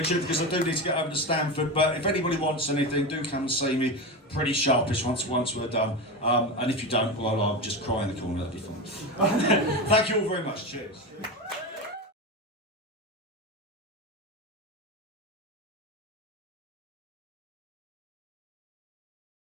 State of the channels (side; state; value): both; normal; correlation 0.20